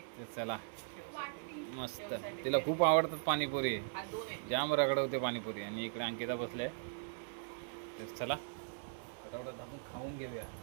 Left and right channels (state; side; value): silent; left; 52 dB below the other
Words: चला, मस्त, तिला खूप आवडतात पाणीपुरी, जाम रगडवते पाणीपुरी. आणि इकडे अंकिता बसले. तर चला फटाफट आपण खाऊन घेऊया,